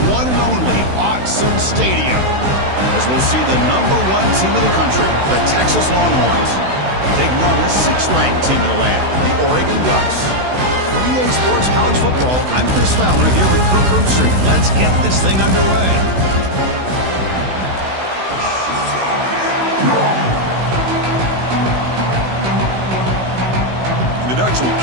one and only Autzen Stadium, as we'll see the #1 team in the country, the Texas Longhorns, taking on the 6th-ranked team in the land, the Oregon Ducks. For EA Sports College Football, I'm Chris Fowler here with Kirk Herbstreit. Let's get this thing underway. The Ducks will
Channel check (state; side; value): late; left; 16 ms